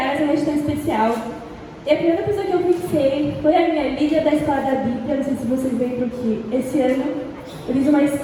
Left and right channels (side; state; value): both; identical; correlation 1.00